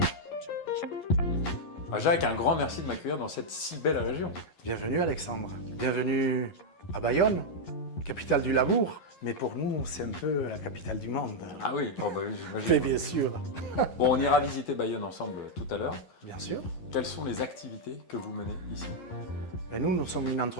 Jacques, un grand merci de m'accueillir dans cette si belle région. Bienvenue Alexandre, bienvenue à Bayonne, capitale du labour. Mais pour nous, c'est un peu la capitale du monde. Ah oui, oh bah oui, j'imagine. Mais bien sûr. Bon, on ira visiter Bayonne ensemble tout à l'heure. Bien sûr. Quelles sont les activités que vous menez ici? Et nous sommes une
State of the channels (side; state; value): right; late; 11 ms